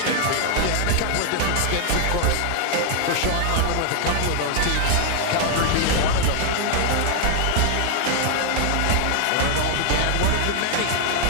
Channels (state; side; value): different; both; correlation 0.00